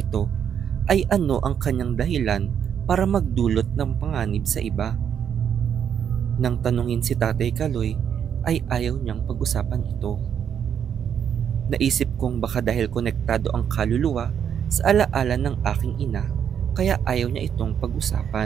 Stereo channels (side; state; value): left; quieter; 8.3 dB